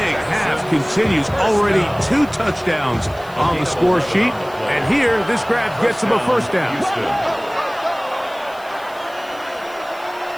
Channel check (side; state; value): right; noise; hiss, 24 dB below the sound